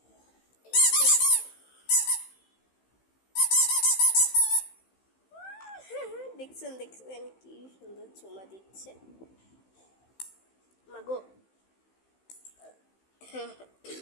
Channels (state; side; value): late; right; 15 ms